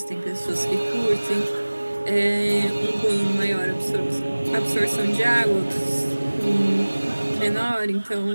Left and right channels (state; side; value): inverted; both; correlation -1.00